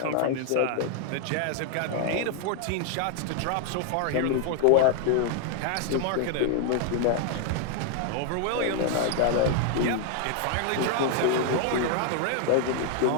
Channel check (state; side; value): different; both; correlation 0.00